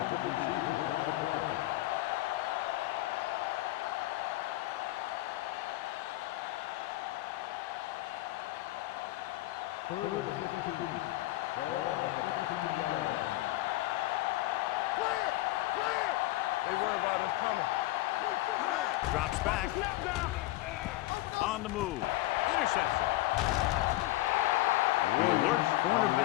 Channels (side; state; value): right; quieter; 17.8 dB